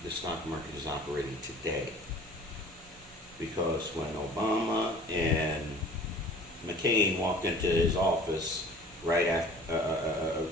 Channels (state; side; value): normal; both; correlation 0.47